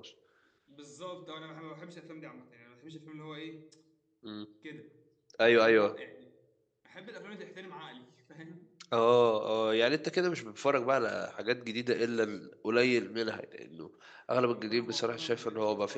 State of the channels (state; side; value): identical; both; correlation 1.00